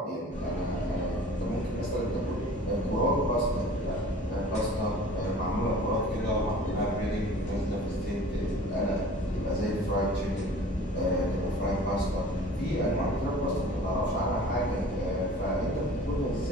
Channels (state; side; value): normal; both; correlation 0.45